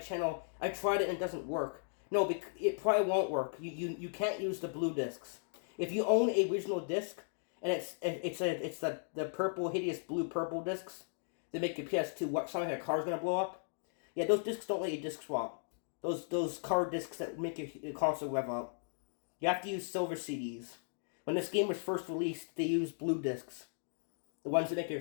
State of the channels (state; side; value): silent; right; digital silence